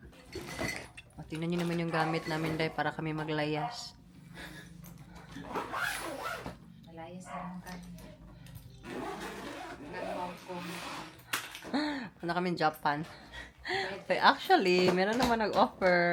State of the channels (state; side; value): identical; both; correlation 1.00